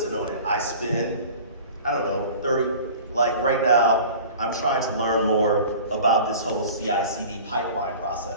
on it? I spend, I don't know, 30, like right now, I'm trying to learn more about this whole CI/CD pipeline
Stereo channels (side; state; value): both; inverted; correlation -0.42